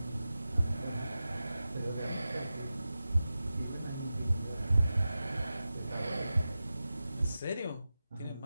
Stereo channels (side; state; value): both; inverted; correlation -0.94